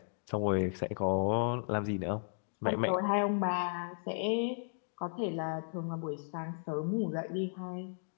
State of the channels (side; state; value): right; silent; digital silence